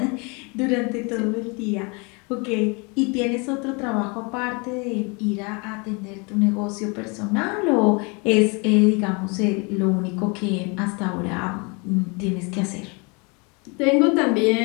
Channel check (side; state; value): right; quieter; 30.9 dB